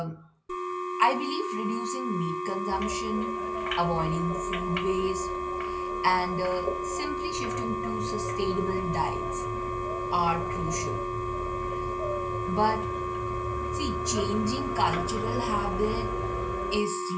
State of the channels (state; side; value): identical; both; correlation 1.00